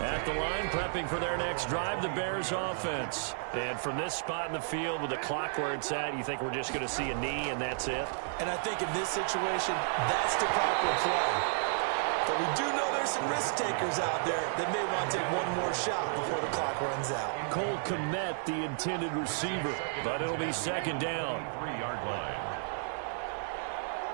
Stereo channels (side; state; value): left; silent; digital silence